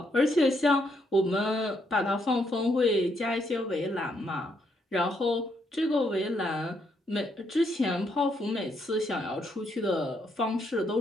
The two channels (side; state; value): both; normal; correlation 0.75